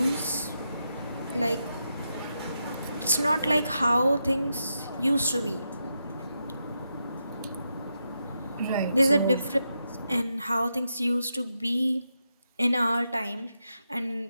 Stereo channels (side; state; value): both; inverted; correlation -0.85